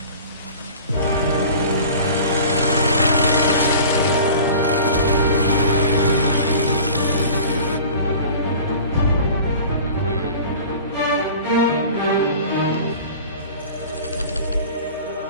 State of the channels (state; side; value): inverted; both; correlation -0.41